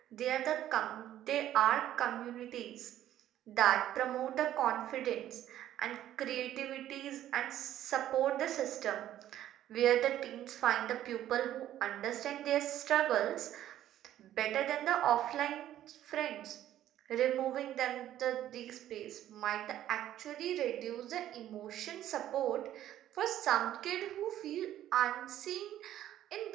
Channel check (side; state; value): left; quieter; 12.3 dB